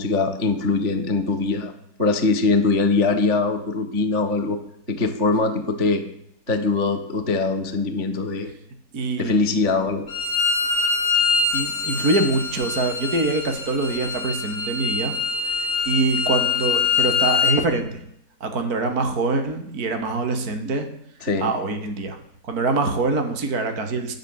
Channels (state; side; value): late; left; 4.4 ms